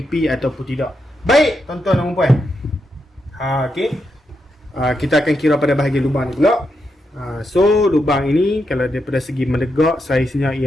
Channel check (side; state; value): both; normal; correlation 0.84